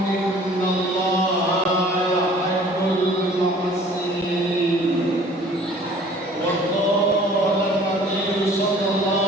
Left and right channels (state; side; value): normal; both; correlation 0.51